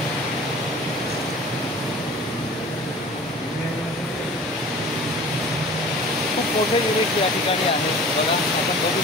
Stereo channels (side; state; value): both; normal; correlation 0.42